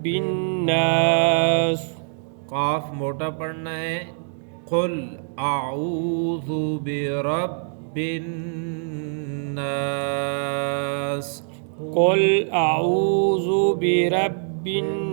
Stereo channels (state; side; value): silent; left; 63 dB below the other